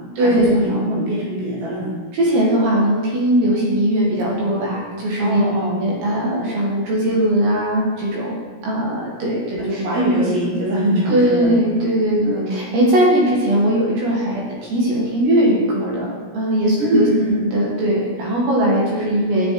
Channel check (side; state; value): left; late; 17 ms